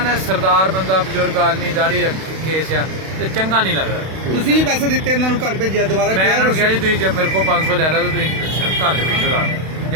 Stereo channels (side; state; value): left; late; 32 ms